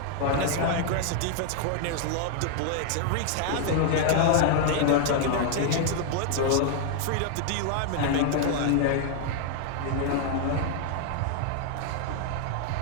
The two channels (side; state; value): both; different; correlation 0.00